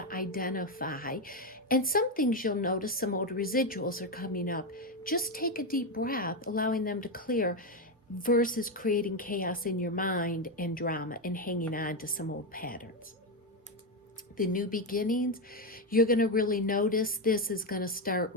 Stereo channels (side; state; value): both; normal; correlation 0.09